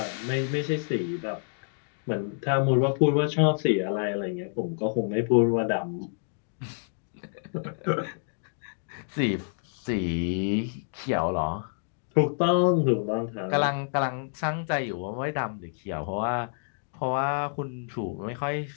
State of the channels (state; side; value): silent; right; digital silence